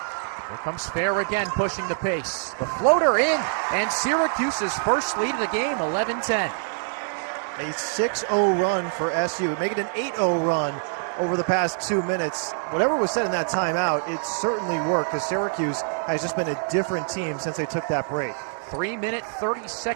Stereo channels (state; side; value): silent; left; digital silence